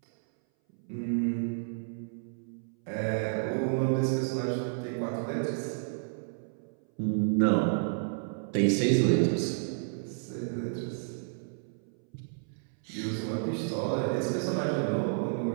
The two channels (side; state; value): left; silent; 57 dB below the other